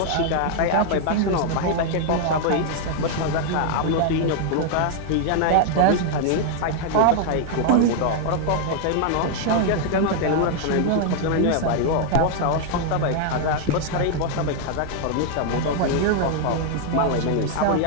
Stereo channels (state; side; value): different; both; correlation 0.00